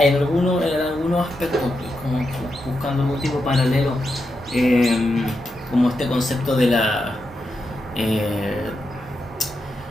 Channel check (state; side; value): normal; both; correlation 0.86